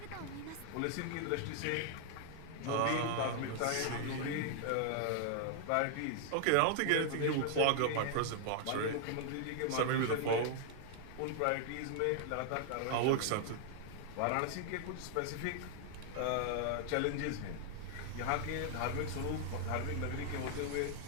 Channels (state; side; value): different; both; correlation 0.00